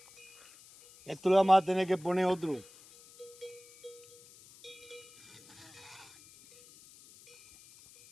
Esto le vamos a tener que poner otro.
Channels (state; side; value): noise; left; hiss, 23 dB below the sound